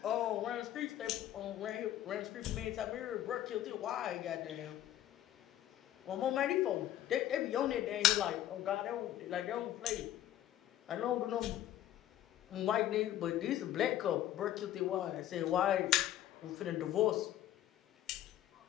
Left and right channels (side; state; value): right; quieter; 12.5 dB